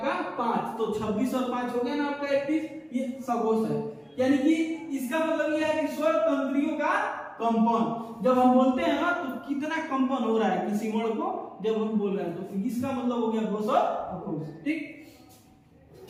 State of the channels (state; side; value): identical; both; correlation 1.00